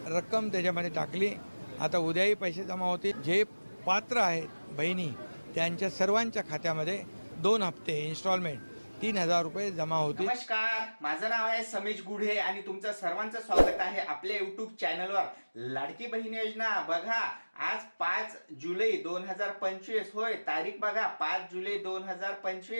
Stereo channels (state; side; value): inverted; both; correlation -1.00